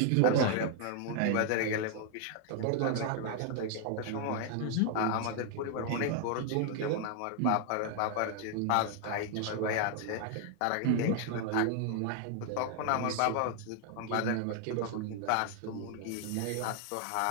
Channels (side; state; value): both; different; correlation 0.00